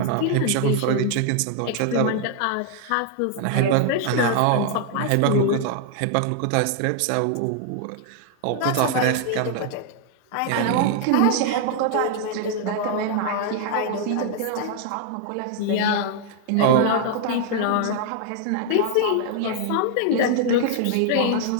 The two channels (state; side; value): different; both; correlation 0.00